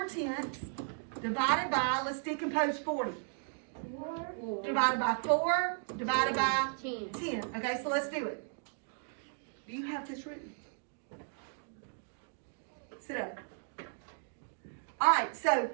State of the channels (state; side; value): silent; left; digital silence